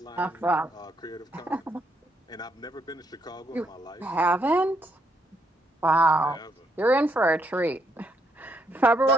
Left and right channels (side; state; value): both; normal; correlation 0.74